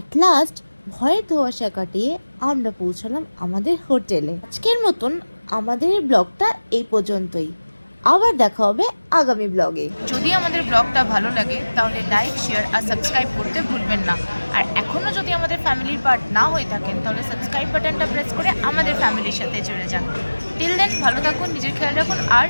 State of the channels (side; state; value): both; inverted; correlation -1.00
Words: লাস্ট ভয়ের ধোঁয়াশা কাটিয়ে আমরা পৌঁছালাম আমাদের হোটেলে। আজকের মতন আমাদের এই ব্লগটা এই পর্যন্তই। আবার দেখা হবে আগামী ব্লগে। যদি আমাদের ব্লগটা ভালো লাগে তাহলে লাইক, শেয়ার আর সাবস্ক্রাইব করতে ভুলবেন না। আর এখনও যদি আমাদের ফ্যামিলির পার্ট না হয়ে থাকেন তাহলে সাবস্ক্রাইব বাটনটা প্রেস করে আমাদের ফ্যামিলির সাথে জুড়ে যান। টিল দেন ভালো থাকুন, নিজের খেয়াল রাখুন আর